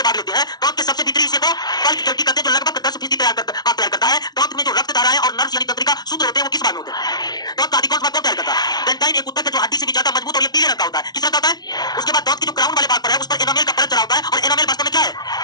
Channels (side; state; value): right; late; 0.19 ms